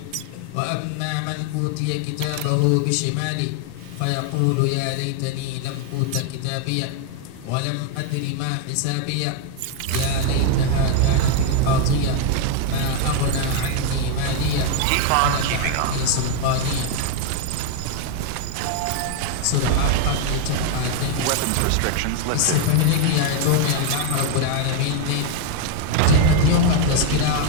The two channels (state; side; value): different; both; correlation 0.01